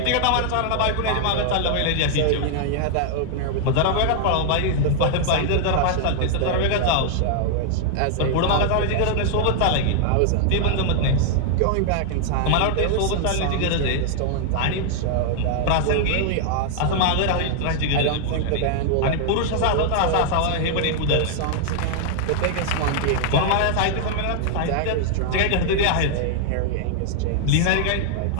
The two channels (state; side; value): different; both; correlation 0.00